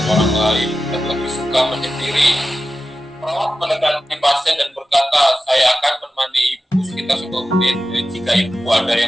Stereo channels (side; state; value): both; normal; correlation 0.93